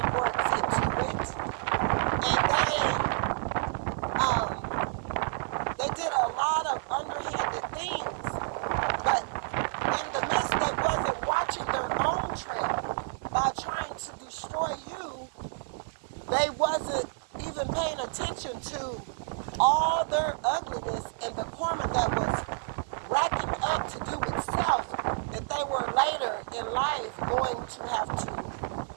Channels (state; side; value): silent; left; 58 dB below the other